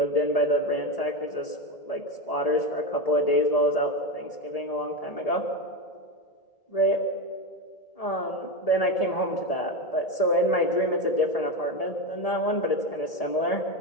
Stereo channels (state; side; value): late; right; 1.8 ms